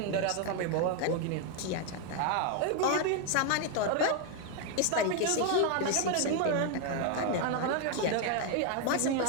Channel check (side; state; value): both; different; correlation 0.01